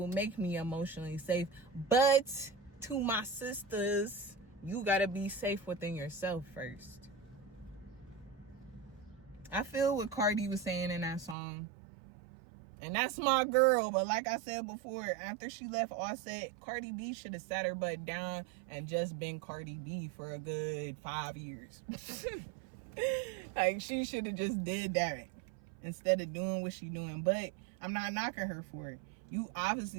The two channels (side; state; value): left; drops out; at 11.4 s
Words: make me emotionally safe. But to my sisters, you got to be safe within yourself first. I feel what Cardi was saying in that song. And that's my girl. But like I said before, after she left Offset, Cardi B should have sat her butt down and just been Cardi B for a good 5 years. Like, she should have just did that instead of doing what she doing. But I'm not knocking her for it. You